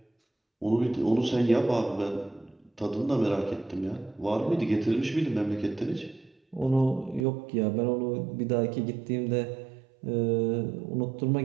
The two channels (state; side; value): drops out; left; at 7.2 s